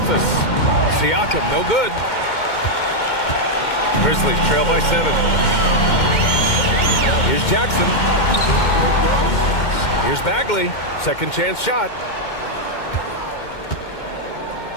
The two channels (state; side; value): late; right; 2.2 ms